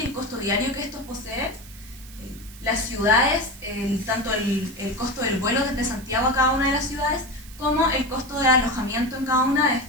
el costo diario que estos poseen, las ciudades, tanto el costo del vuelo desde Santiago a cada una de las ciudades, como el costo de alojamiento en cada una de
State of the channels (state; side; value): noise; right; hiss, 19 dB below the sound